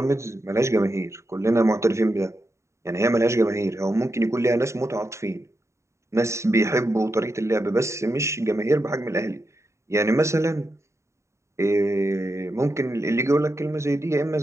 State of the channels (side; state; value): left; late; 0.14 ms